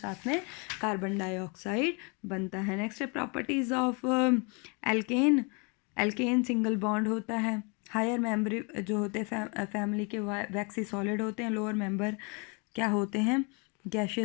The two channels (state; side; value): quieter; right; 32.8 dB